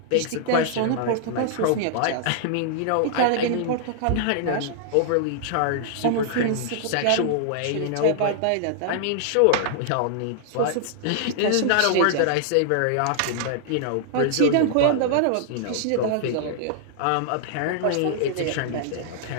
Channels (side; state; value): both; different; correlation -0.01